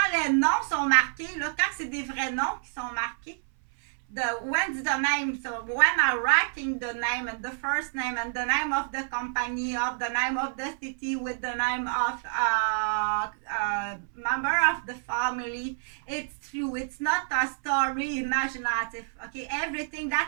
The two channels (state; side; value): silent; left; 59 dB below the other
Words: les noms sont marqués, là, quand c'est des vrais noms qui sont marqués, when's the name? So when I'm writing the name and the first name and the name of the company, of the name of the city with the name of member of the family, it's true. It's not a story imaginative. Okay, everything